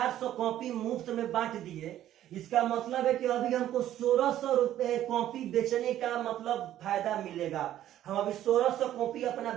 कॉपी मुफ्त में बांट दिए, इसका मतलब है कि अभी हमको 1600 रुपए कॉपी बेचने का मतलब फायदा मिलेगा। हम अभी 1600 कॉपी अपना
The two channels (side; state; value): left; quieter; 12.4 dB